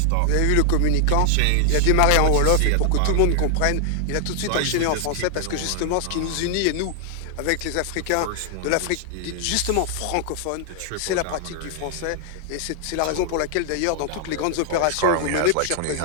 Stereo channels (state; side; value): different; both; correlation 0.00